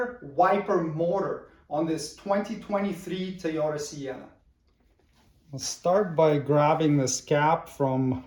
wiper motor on this 2023 Toyota Sienna. I'll start by grabbing this cap from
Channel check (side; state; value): both; identical; correlation 1.00